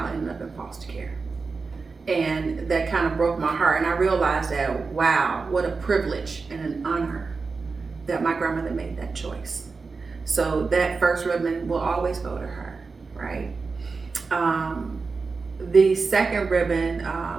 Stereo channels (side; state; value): left; quieter; 4.5 dB